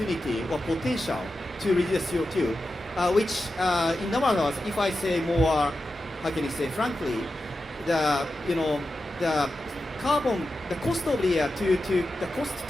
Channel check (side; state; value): both; normal; correlation 0.91